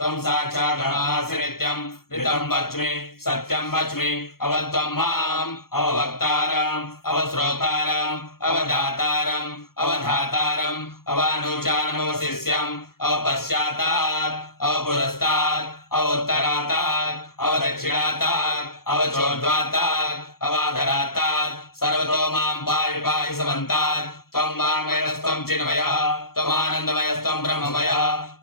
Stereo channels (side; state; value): right; late; 0.94 ms